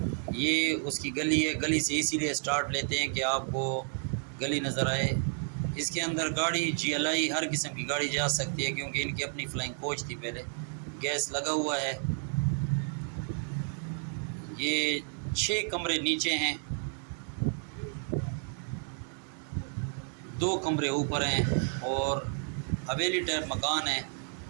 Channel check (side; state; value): left; silent; 57 dB below the other